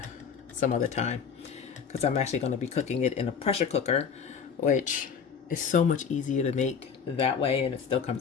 some other time because I'm actually going to be cooking it in a pressure cooker, which is so much easier to make that way, and it still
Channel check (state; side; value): quieter; right; 6.6 dB